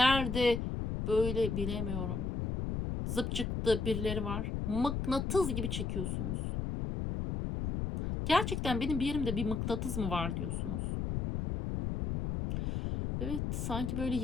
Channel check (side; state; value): left; noise; rumble, 2 dB below the sound